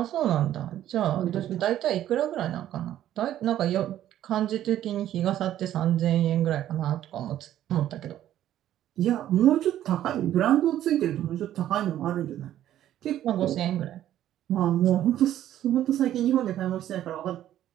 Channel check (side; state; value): left; quieter; 12.1 dB